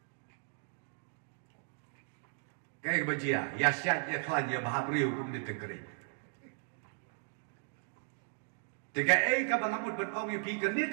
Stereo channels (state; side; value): silent; left; 54 dB below the other